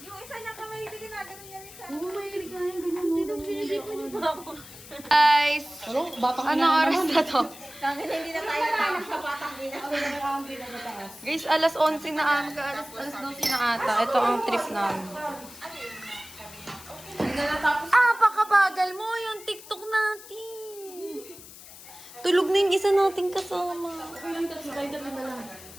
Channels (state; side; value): noise; left; hiss, 17 dB below the sound